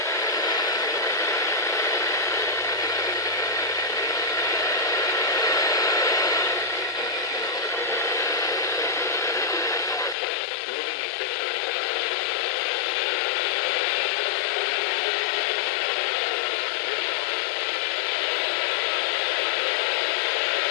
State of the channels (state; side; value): drops out; right; at 10.2 s